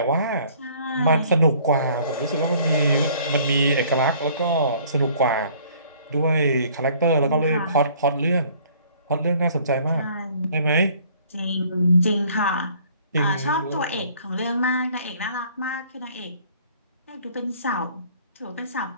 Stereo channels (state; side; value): inverted; both; correlation -0.57